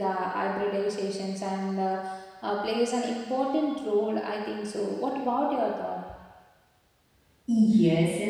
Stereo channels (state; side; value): identical; both; correlation 1.00